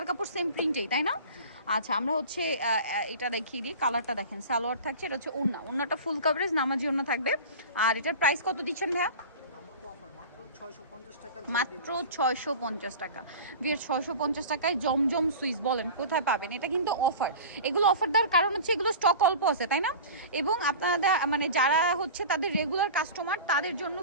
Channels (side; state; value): both; inverted; correlation -0.35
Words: কাপড় সেম প্রিন্টেই, তাই না? আচ্ছা, আমরা হচ্ছে এটা দেখিয়ে দিই। কালারটা দেখেন, সালোয়ার থাকছে, এটা হচ্ছে ওড়নাটা ফুল কভারেজ নামাজি ওড়না থাকবে। আর এটার প্রাইস কত দিচ্ছেন ভাইয়া? মাত্র 650 টাকা। বিয়ের 650 টাকায় জমজম সুইস, বলেন কোথায় পাবেন? এটা কিন্তু অফার। এগুলো অফার দেওয়ার কারণ হচ্ছে এগুলো স্টক অল্প আছে, তাই না? এবং আপনারা মানে যারা হচ্ছে তাদের রেগুলার কাস্টমার, তাদের জন্য